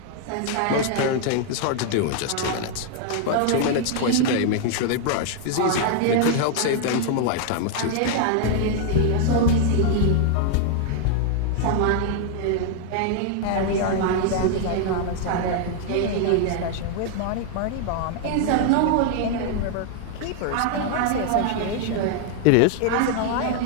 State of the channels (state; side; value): different; both; correlation 0.00